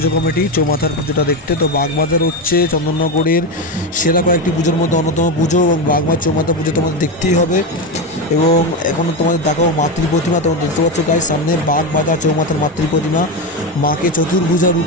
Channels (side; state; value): both; normal; correlation 0.14